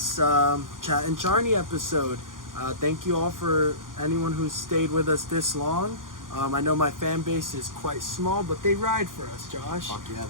Chat'n Charni episode. Thank you all for anyone who's stayed with us this long. I know my fan base is quite small, but they ride for us, Josh. Fuck yeah,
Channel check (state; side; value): late; left; 0.90 ms